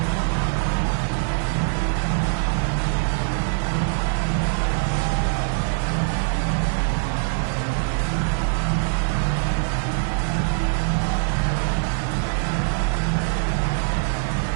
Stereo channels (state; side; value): silent; left; 63 dB below the other